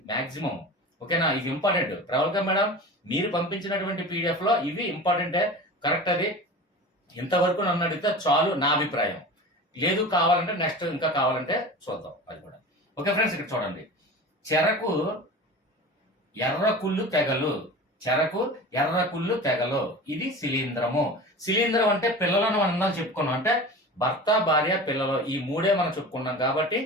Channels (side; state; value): both; normal; correlation 0.34